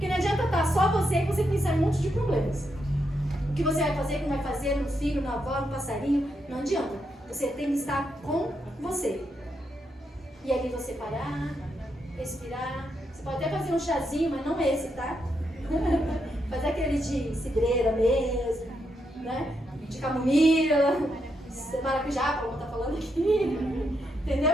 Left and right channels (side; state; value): both; normal; correlation 0.81